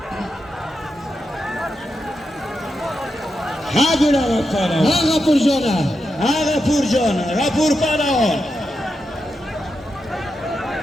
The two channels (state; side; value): normal; both; correlation 0.87